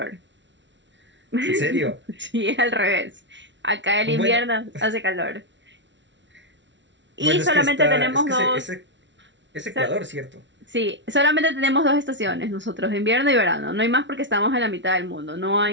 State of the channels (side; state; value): left; late; 0.53 ms